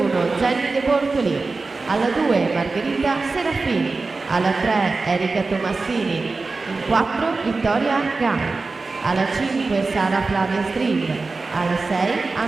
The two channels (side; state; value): left; quieter; 3.8 dB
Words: Jenny De Bortoli, alla 2 Margherita Serafini, alla 3 Erika Tomassini, in 4 Vittoria Gai, alla 5 Sara Flavia Stream, alla 6